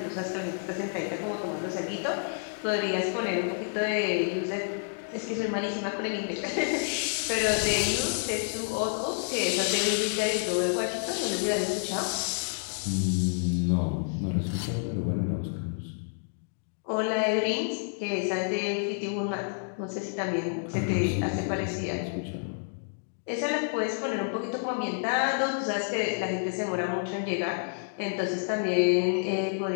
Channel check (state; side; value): silent; right; digital silence